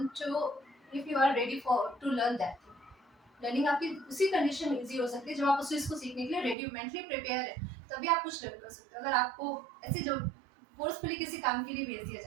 to, if you are ready for to learn that thing. Learning आपकी उसी कंडीशन में इजी हो सकती है जब आप उस चीज़ को सीखने के लिए रेडी, मेंटली प्रिपेयर है, तभी आप कुछ लर्न कर सकते हो। अगर आपको ऐसे जो फोर्सफुली किसी काम के लिए भेज दिया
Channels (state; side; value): drops out; left; at 6.6 s